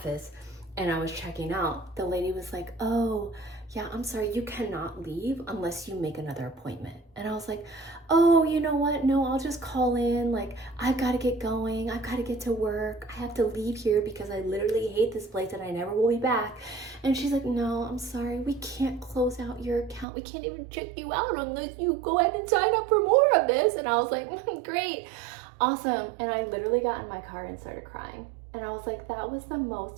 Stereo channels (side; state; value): left; drops out; at 20.1 s